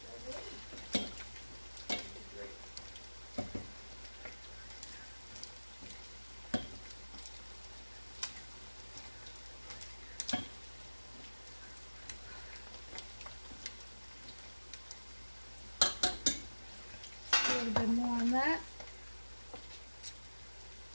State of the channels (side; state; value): both; inverted; correlation -1.00